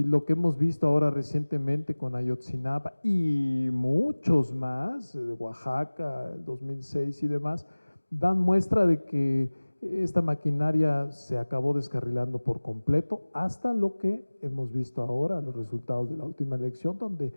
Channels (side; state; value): both; inverted; correlation -1.00